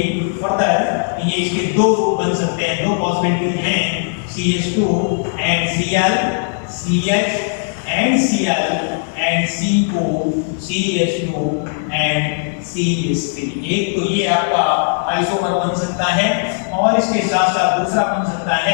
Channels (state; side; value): silent; right; digital silence